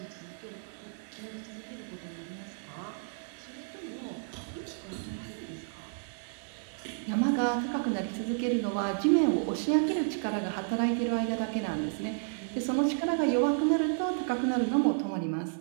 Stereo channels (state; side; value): silent; left; 57 dB below the other